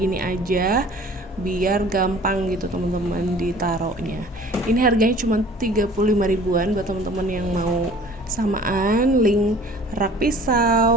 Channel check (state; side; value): normal; both; correlation 0.48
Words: gini aja, biar gampang gitu teman-teman ditaruhnya. Ini harganya cuma 35 ribuan buat teman-teman yang mau samaan. Link rak